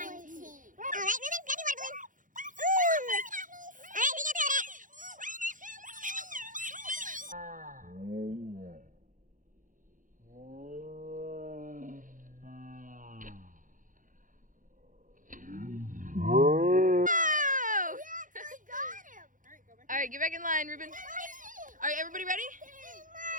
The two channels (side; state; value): left; late; 0.38 ms